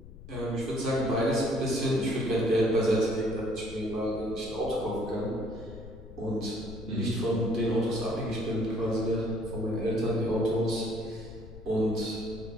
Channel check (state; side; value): noise; left; rumble, 15 dB below the sound